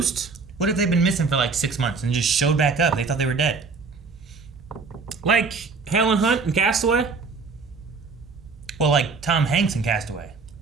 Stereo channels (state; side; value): quieter; left; 4.6 dB